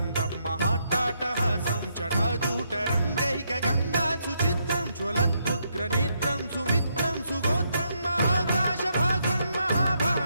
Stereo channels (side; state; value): both; inverted; correlation -0.77